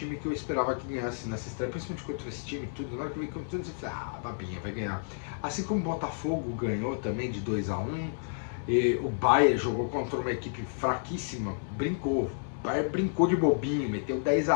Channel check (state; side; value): silent; right; digital silence